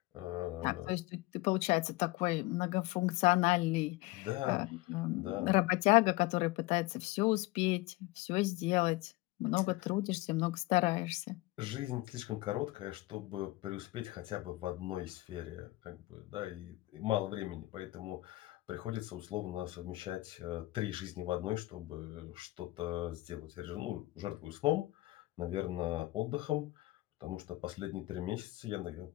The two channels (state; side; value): quieter; right; 19.8 dB